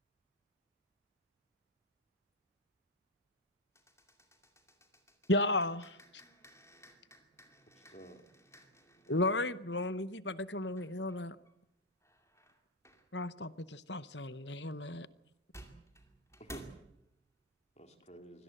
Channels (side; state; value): both; normal; correlation 0.00